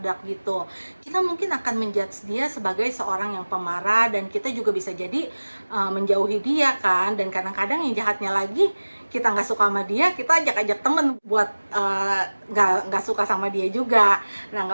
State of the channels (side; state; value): both; inverted; correlation -1.00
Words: gitu. Kita mungkin akan menjudge dia sebagai seorang yang pemarah, dan kita juga bisa jadi menjauhi dia kan. Dan kadang-kadang yang jahatnya lagi, kita nggak suka sama dia, kita ajak-ajak temen buat nggak suka sama dia juga. Nah,